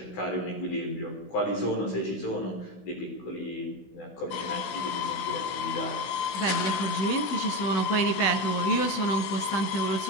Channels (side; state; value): right; late; 16 ms